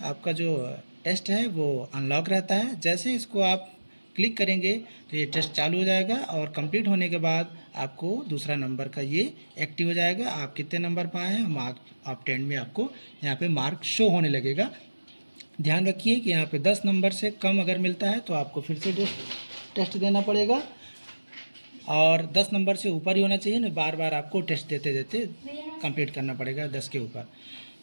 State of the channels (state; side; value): inverted; both; correlation -1.00